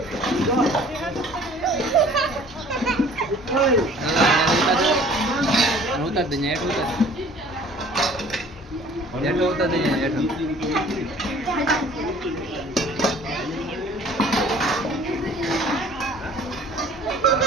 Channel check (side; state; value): both; normal; correlation 0.51